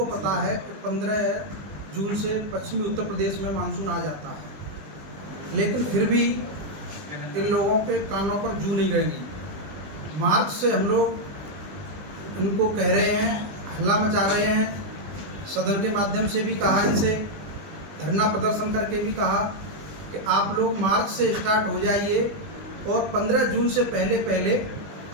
पता है कि 15 जून से पश्चिमी उत्तर प्रदेश में मानसून आ जाता है, लेकिन फिर भी इन लोगों के कानों पर जू नहीं रहेंगी। मार्च से हम लोग इनको कह रहे हैं, हल्ला मचा रहे हैं, सदन के माध्यम से भी कहा, इनसे धरना प्रदर्शन करके भी कहा कि आप लोग मार्च से स्टार्ट हो जाइए और 15 जून से पहले पहले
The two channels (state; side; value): late; left; 20 ms